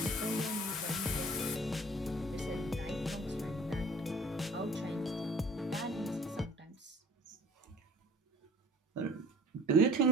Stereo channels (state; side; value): normal; both; correlation 0.48